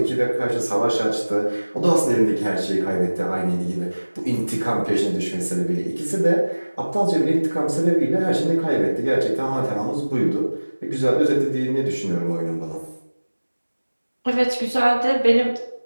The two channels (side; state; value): both; inverted; correlation -1.00